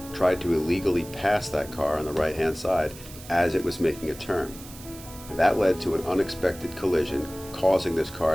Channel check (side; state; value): right; noise; hiss, 17 dB below the sound